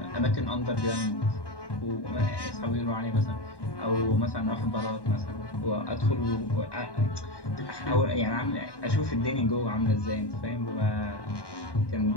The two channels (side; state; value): right; late; 1.1 ms